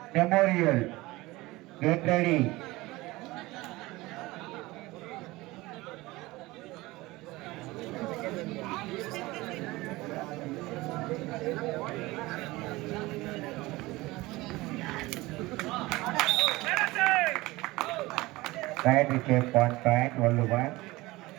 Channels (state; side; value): quieter; left; 20.4 dB